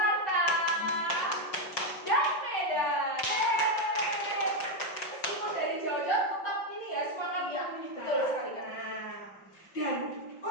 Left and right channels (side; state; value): right; late; 5.6 ms